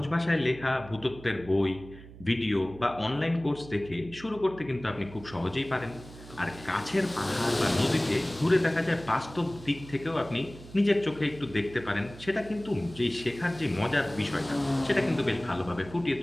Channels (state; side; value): noise; right; hum, 17 dB below the sound